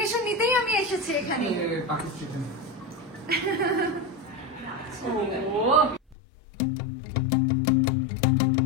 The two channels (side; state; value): right; drops out; at 6.2 s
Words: নিতেই আমি এসেছি এখানে।